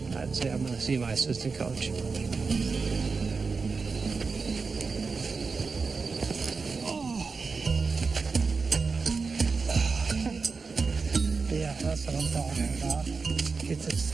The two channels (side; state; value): left; quieter; 4.6 dB